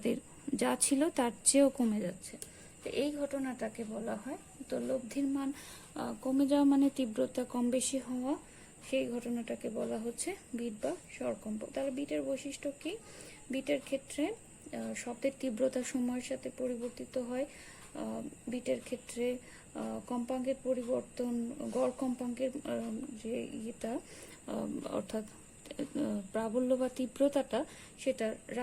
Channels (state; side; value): identical; both; correlation 1.00